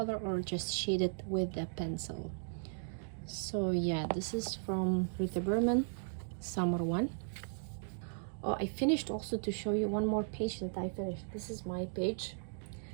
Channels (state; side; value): silent; left; digital silence